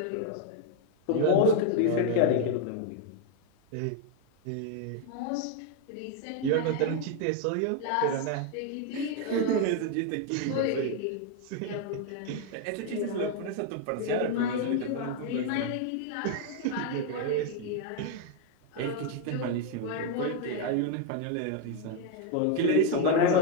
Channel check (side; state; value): both; different; correlation 0.01